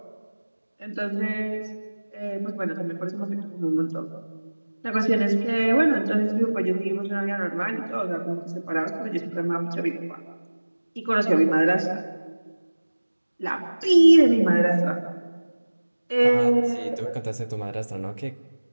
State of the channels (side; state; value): both; inverted; correlation -1.00